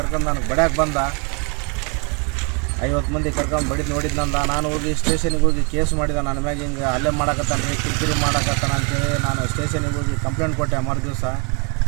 ನನಗೆ ಬಡ್ಯಾಕೆ ಬಂದ. 50 ಮಂದಿ ಕರ್ಕೊಂಡು ಬಡಿದು ನೋಡಿದ್ನಂದ. ನಾನು ಹೋಗಿ ಸ್ಟೇಷನಿಗೆ ಹೋಗಿ ಕೇಸ್ ಮಾಡಿದೆ. ನನ್ನ ಮ್ಯಾಗ ಹಿಂಗೆ ಹಲ್ಲೆ ಮಾಡಕತ್ತಾನ, ಕಿರಿಕಿರಿ ಮಾಡಕತ್ತಾನ ಅಂತೇಳಿ ನಾನು ಸ್ಟೇಷನಿಗೆ ಹೋಗಿ ಕಂಪ್ಲೇಂಟ್ ಕೊಟ್ಟೆ. ಮರುದಿವಸ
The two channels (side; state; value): left; quieter; 33.6 dB